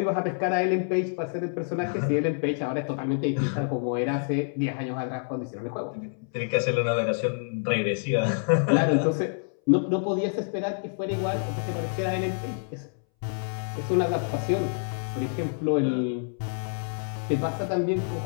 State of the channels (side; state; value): right; silent; 60 dB below the other